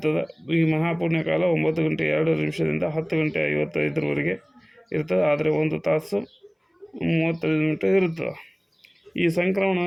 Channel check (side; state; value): both; identical; correlation 1.00